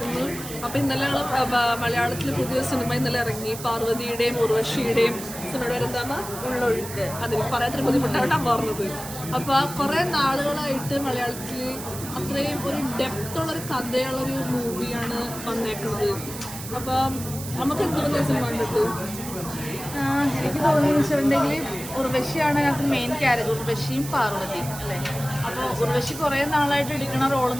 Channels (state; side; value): noise; right; hiss, 11 dB below the sound